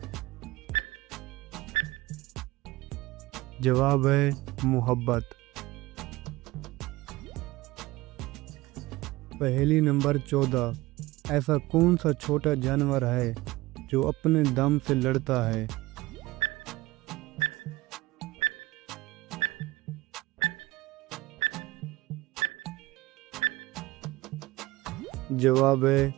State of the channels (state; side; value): quieter; left; 19.4 dB